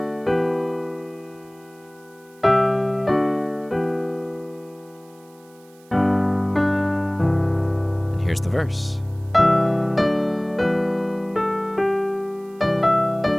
And here's the verse.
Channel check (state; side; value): noise; right; hiss, 29 dB below the sound